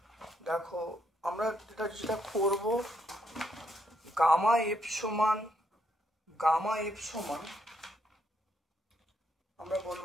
দেখো আমরা যেটা করব, গামা এফ সমান আমরা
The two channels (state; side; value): normal; both; correlation 0.76